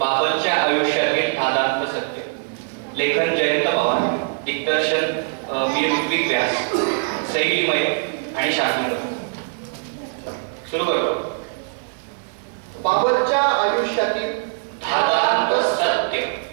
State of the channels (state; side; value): silent; left; 57 dB below the other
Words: आयुष्यातील धादांत सत्य. लेखन जयंत पवार, दिग्दर्शन मी ऋत्विक व्यास, शैलीमय आणि शास्त्रज्ञ. सुरू करतो. बाबलच्या आयुष्यातील धादांत सत्य.